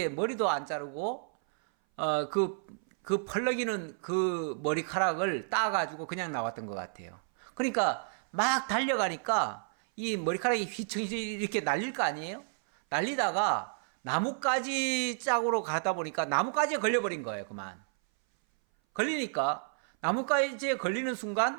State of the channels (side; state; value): left; silent; 57 dB below the other